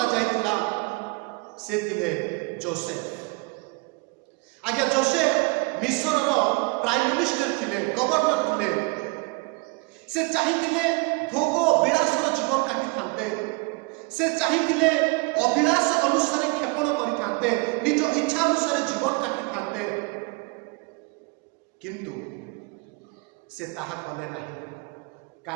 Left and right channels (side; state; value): left; quieter; 27.4 dB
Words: जायतिला, से थिले जोसेफ। आज्ञा जोसेफ मिस्र प्राइम मिनिस्टर थिले, गवर्नर थिले, से चाहिए भोग विलासर जीवन काटी थांते, से चाहिए अभिलाष अनुसार क्षेपण करि निज इच्छा अनुसार जीवन काटी थांते, किंतु से ताहा कले नहीं।